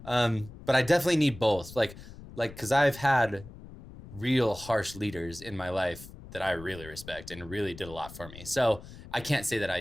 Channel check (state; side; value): noise; left; rumble, 16 dB below the sound